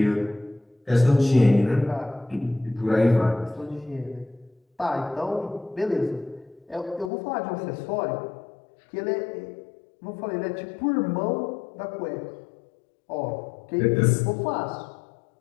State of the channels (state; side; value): drops out; right; at 7.1 s